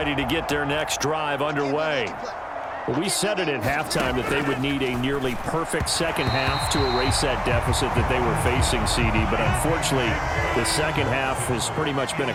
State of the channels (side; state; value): both; identical; correlation 1.00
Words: to get their next drive underway. Well, we said it at halftime that they would need a nearly perfect second half to erase that deficit that they were facing, CD, but unfortunately, the second half has pretty much been